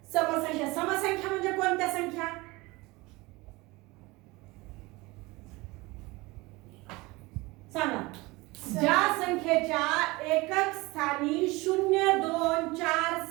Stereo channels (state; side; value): quieter; left; 22.7 dB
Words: समसंख्या. समसंख्या म्हणजे कोणत्या संख्या, सांगा. ज्या संख्येच्या एकक स्थानी 0, 2, 4,